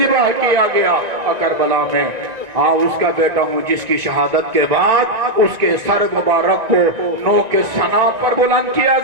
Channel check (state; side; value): late; left; 1.9 ms